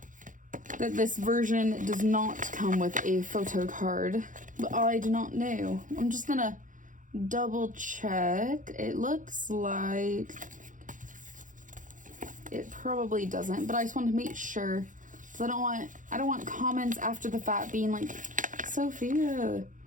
that this version does not come with a photo card, but I do not know. I'm just gonna double check. It looks like it probably doesn't, but I just want to make sure, because I don't want comments after the fact being like, Sophia,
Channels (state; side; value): late; left; 0.38 ms